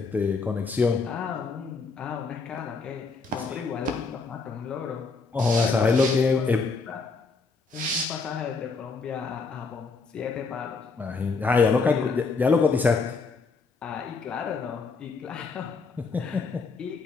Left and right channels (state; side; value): quieter; right; 4.4 dB